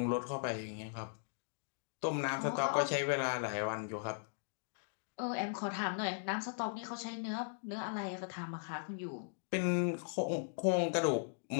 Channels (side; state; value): right; silent; digital silence